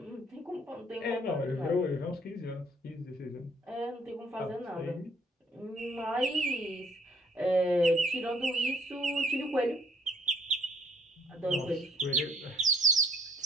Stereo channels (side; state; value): both; normal; correlation 0.61